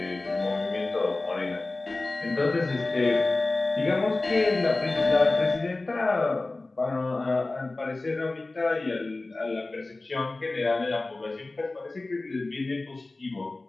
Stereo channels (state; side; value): quieter; right; 3.1 dB